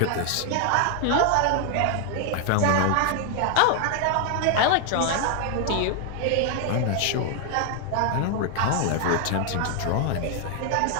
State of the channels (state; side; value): different; both; correlation 0.00